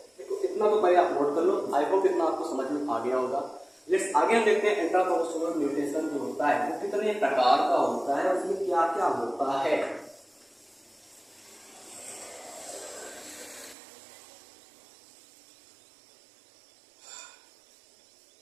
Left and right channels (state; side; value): drops out; left; at 13.8 s